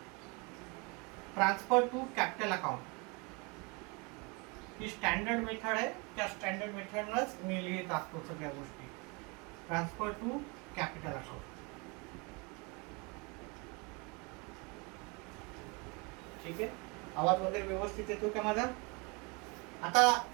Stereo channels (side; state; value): left; quieter; 29.6 dB